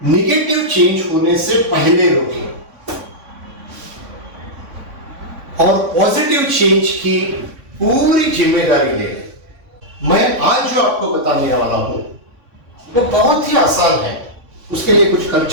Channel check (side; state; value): left; late; 3.6 ms